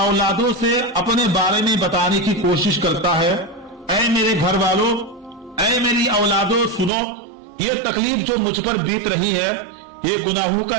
से अपने बारे में बताने की कोशिश करता है, ऐ मेरे घर वालों, ऐ मेरी औलादों, सुनो, ये तकलीफ जो मुझ पर बीत रही है ये गुनाहों का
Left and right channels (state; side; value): drops out; left; at 6.9 s